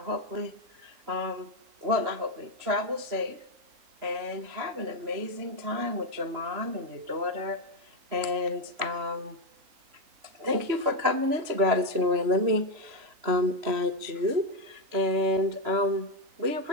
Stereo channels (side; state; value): left; late; 3.0 ms